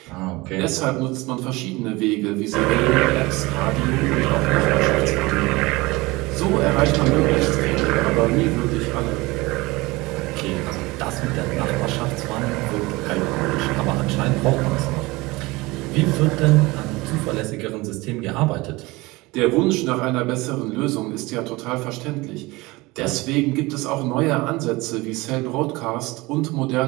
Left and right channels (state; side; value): quieter; left; 22.2 dB